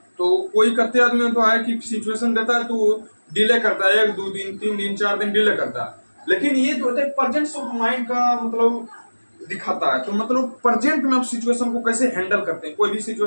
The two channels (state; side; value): inverted; both; correlation -1.00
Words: तो कोई करते आदमी तो है कि सिचुएशन देता है तो डिले करता है, 1 2 दिन 3 दिन 4 दिन डिले करता है। लेकिन ये जो होता है प्रेजेंस ऑफ माइंड का मतलब दिखाता है, तो मतलब प्रेजेंट में आप सिचुएशन को कैसे हैंडल करते हैं। कोई भी